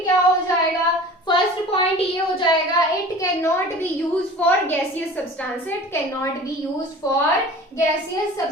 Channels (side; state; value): both; normal; correlation 0.41